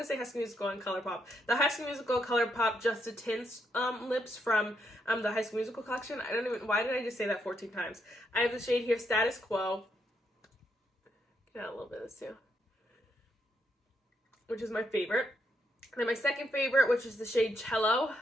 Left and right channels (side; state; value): both; normal; correlation 0.78